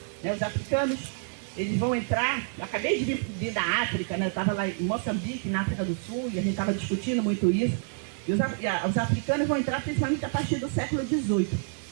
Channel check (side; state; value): left; silent; 59 dB below the other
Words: Né, os africanos, eles vão entrar, eu acabei de vir da África, né, eu estava lá em Moçambique, na África do Sul, e a gente estava discutindo muito isso, e os africanos vão entrar principalmente a partir do século XVIII.